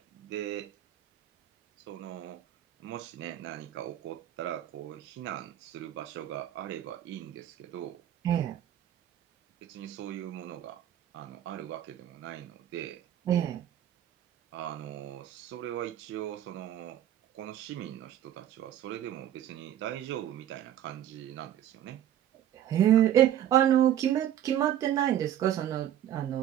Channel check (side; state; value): left; quieter; 11.3 dB